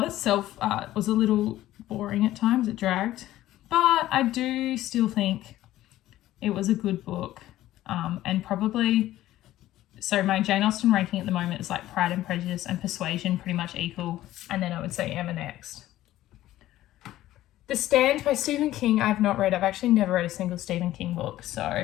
itself was a little boring at times. It dragged. But I do still think it was a good book. And probably, so my Jane Austen ranking at the moment is like Pride and Prejudice and Persuasion pretty much equal. And then I would say Emma next. The Stand by Stephen King, I've not read. I've actually never read a single Stephen King book,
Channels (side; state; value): right; quieter; 14.6 dB